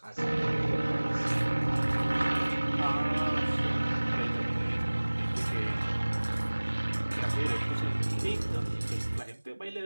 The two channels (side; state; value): both; inverted; correlation -1.00